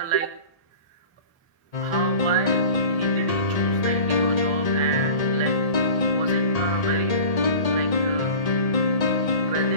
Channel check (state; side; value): late; right; 1.8 ms